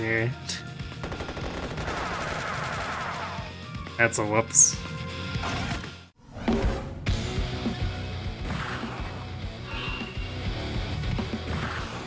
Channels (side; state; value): both; identical; correlation 1.00